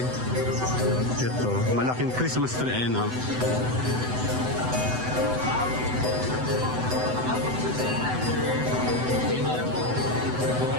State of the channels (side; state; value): left; late; 7.9 ms